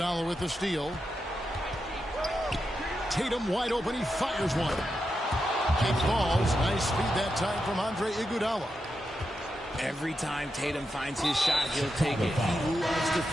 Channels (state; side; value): normal; both; correlation 0.87